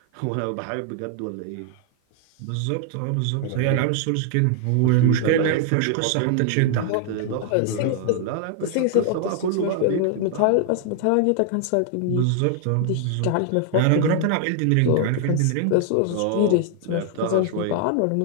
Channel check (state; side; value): different; both; correlation 0.00